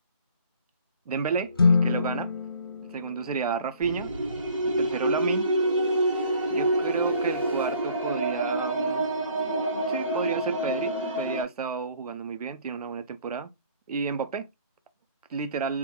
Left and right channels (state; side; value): inverted; both; correlation -0.56